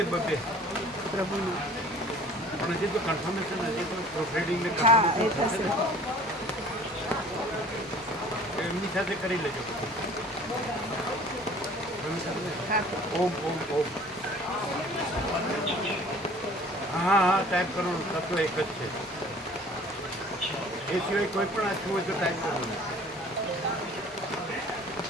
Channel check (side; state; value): both; normal; correlation 0.49